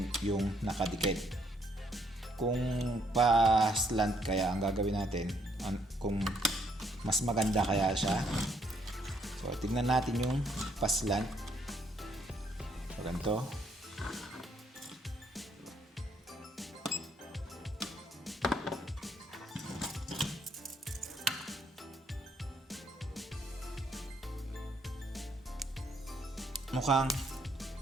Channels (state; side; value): normal; both; correlation 0.70